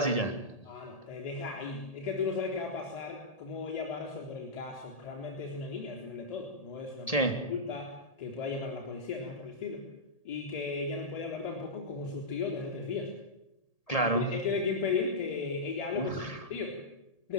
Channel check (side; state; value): right; late; 1.8 ms